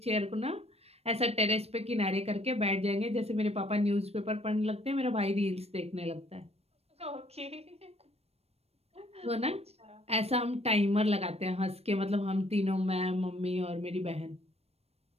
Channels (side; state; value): left; late; 0.30 ms